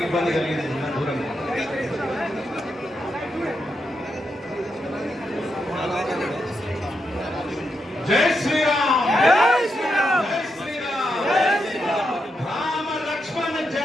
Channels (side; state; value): both; normal; correlation 0.84